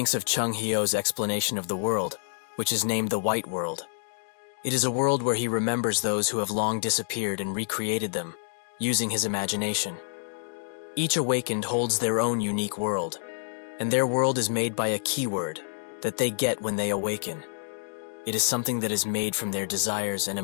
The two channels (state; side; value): silent; right; digital silence